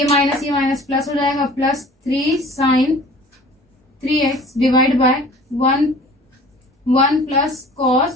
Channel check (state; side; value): normal; both; correlation 0.46